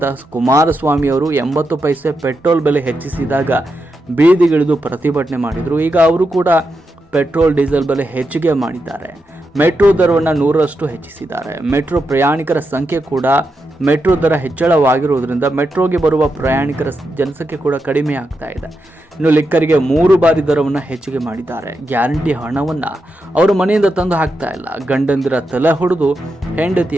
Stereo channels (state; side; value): normal; both; correlation 0.86